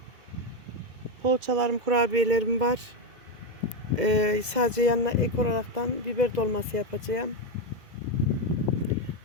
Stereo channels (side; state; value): left; late; 2.1 ms